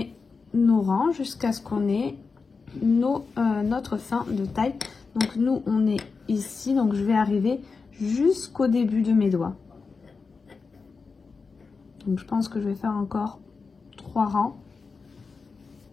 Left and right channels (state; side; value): quieter; right; 4.7 dB